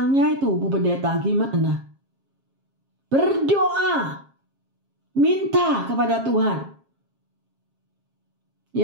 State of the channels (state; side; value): late; left; 7.4 ms